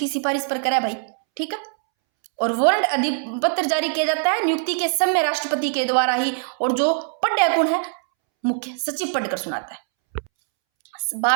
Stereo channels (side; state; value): left; silent; 64 dB below the other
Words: सिफारिश पर करा भाई, ठीक है। और वारंट अधिपत्र जारी किया जाता है नियुक्ति के समय राष्ट्रपति के द्वारा ही, और जो पढ़ कौन है? मुख्य सचिव पढ़कर सुनाता है।